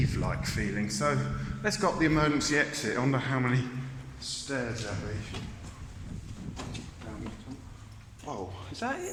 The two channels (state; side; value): identical; both; correlation 1.00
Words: feeling. So let's go up the emergency exit. I wonder how many stairs there'll be. Oh, is that